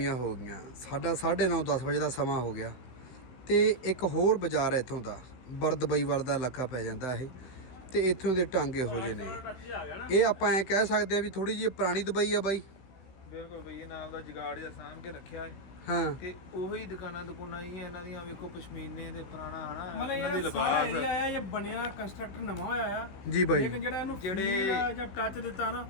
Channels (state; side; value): late; right; 15 ms